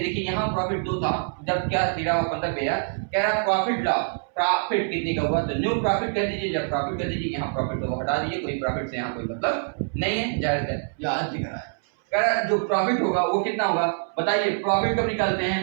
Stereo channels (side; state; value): left; silent; 62 dB below the other